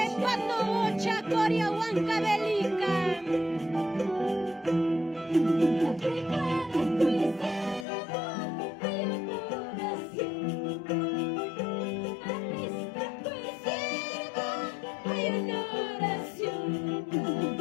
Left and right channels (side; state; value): right; drops out; at 7.9 s